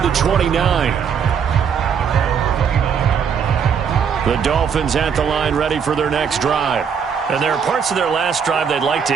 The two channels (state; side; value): quieter; left; 7.0 dB